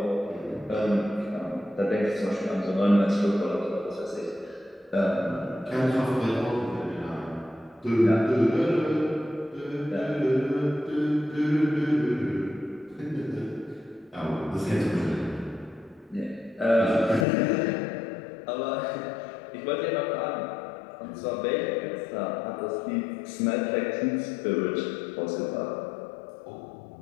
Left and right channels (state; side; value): drops out; right; at 17.2 s